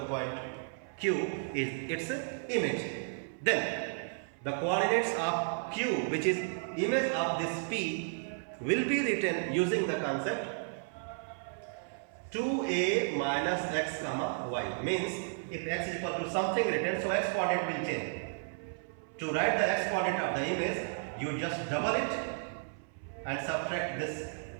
point q is its image, then the coordinates of q, which is image of this p, will be written using the concept 2a minus x comma y. Means if x is equal to something written, so x coordinate will change. To write the x coordinate of the image, you just double it and subtract this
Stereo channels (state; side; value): silent; left; 55 dB below the other